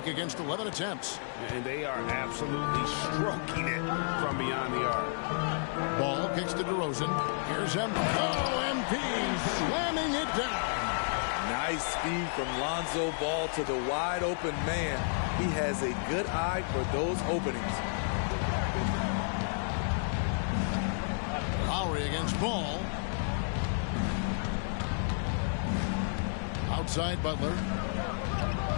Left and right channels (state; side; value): silent; right; digital silence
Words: against 11 attempts. And they are absolutely stroking it from beyond the arc. Ball kicks to DeRozan. Here's MP. Oh, MP slamming it down. Nice speed from Lonzo Ball to the wide-open man. He has a good eye for those openings. Lowry against Ball. Outside Butler.